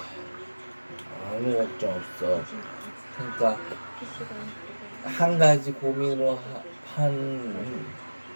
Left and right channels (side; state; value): both; inverted; correlation -1.00